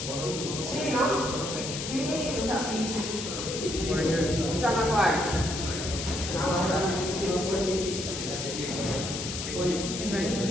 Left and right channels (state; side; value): noise; left; hiss, 5 dB below the sound